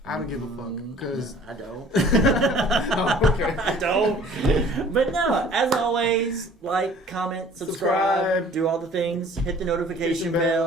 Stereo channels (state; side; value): normal; both; correlation 0.51